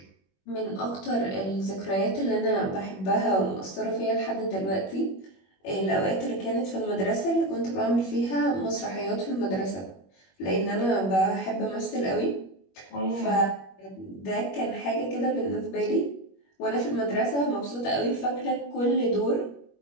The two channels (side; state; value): right; late; 21 ms